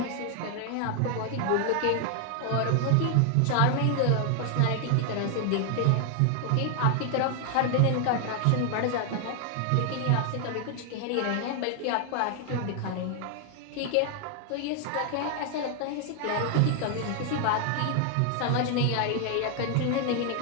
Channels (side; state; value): both; different; correlation 0.00